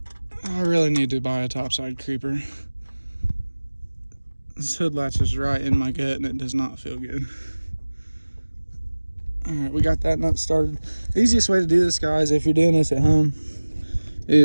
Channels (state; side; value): inverted; both; correlation -1.00